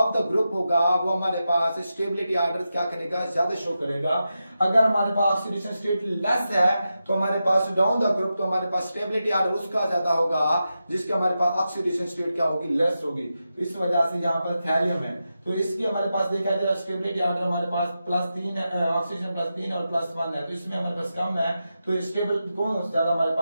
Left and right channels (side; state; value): both; inverted; correlation -0.90